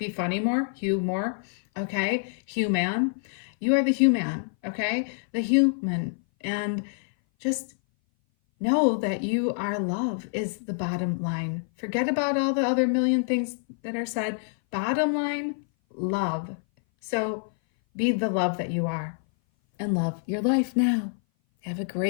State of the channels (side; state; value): right; silent; 57 dB below the other